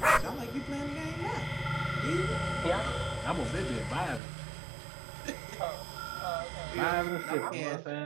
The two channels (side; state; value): left; drops out; at 4.2 s